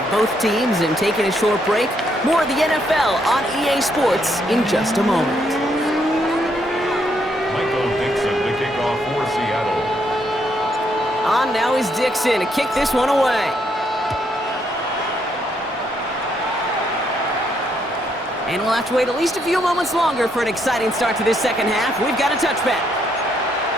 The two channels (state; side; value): normal; both; correlation 0.74